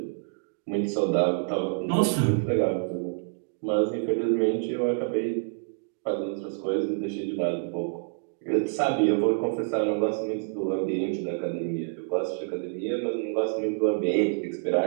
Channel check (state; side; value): silent; left; digital silence